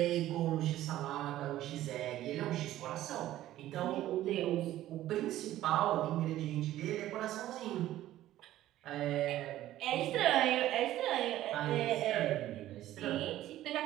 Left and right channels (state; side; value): quieter; left; 14.0 dB